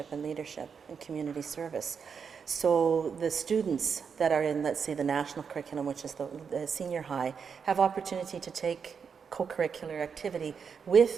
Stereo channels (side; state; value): left; quieter; 6.4 dB